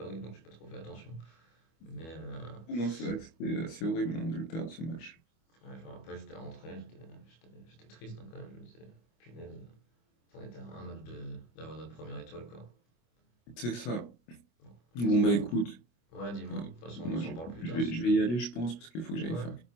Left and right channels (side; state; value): right; late; 25 ms